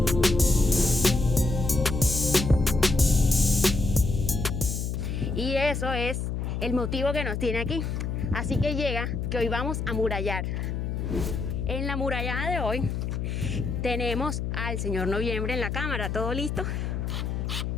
Y eso es el motivo que nos tiene aquí. Así que llega que hoy vamos a murallar. En la murallada de hoy tenemos al señor Noviembre en la cámara, ¿todo listo?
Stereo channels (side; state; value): left; noise; hum, 2 dB below the sound